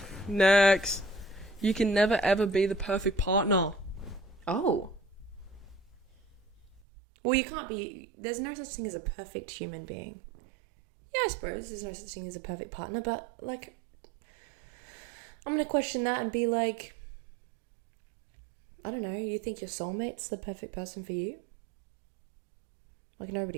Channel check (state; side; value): drops out; left; at 6.8 s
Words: You can never ever be the perfect partner. Oh. Well, you can't be. There's no such thing as a perfect human being. Yeah, I suppose there's no such thing as a perfect partner, but, like, I'm going to question that and be like, I don't know, you think your soulmate's the perfect person for you? Like,